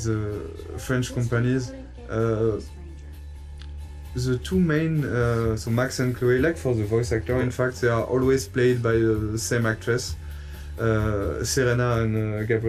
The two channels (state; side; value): identical; both; correlation 1.00